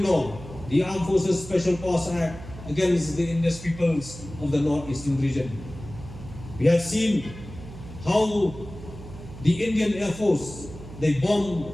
law, the Armed Forces Special Powers Act, against the indigenous peoples of the northeastern region. We have seen how the Indian Air Force, they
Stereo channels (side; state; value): right; noise; hum, 14 dB below the sound